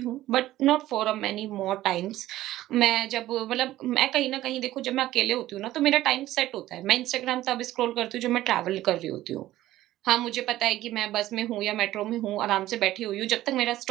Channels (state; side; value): quieter; left; 15.0 dB